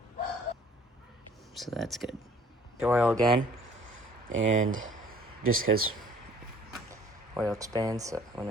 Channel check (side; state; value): both; normal; correlation 0.55